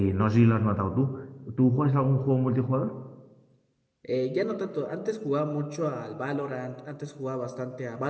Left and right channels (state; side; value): identical; both; correlation 1.00